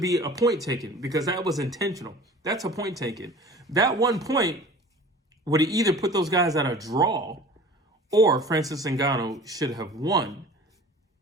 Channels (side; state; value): both; normal; correlation 0.43